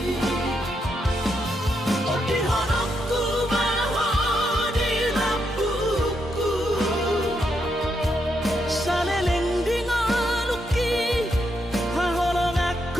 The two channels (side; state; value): both; normal; correlation 0.80